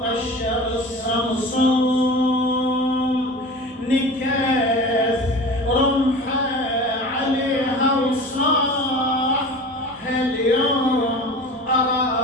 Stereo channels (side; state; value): both; normal; correlation 0.36